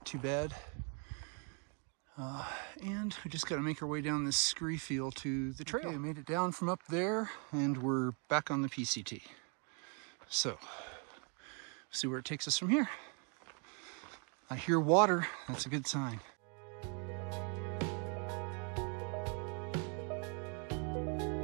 too bad. And we just got to make our way down this scree field to the trail. Okay, we made it down from up there and we're back on the PCT. So, see where it takes us from here. I hear water, that's a good sign.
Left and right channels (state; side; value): quieter; left; 38.0 dB